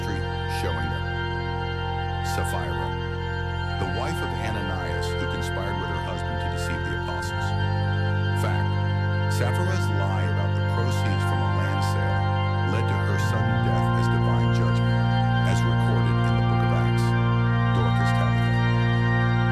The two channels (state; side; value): noise; right; hum, 23 dB below the sound